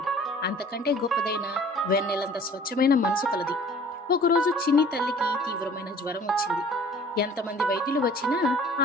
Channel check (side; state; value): both; normal; correlation 0.50